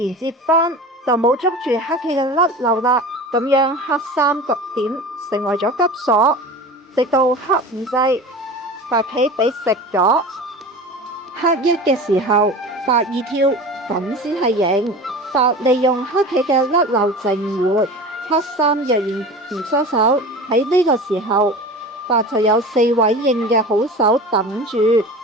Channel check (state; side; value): normal; both; correlation 0.34